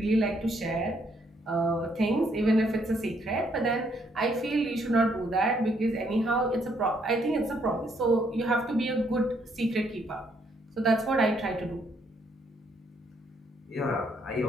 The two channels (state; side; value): normal; both; correlation 0.71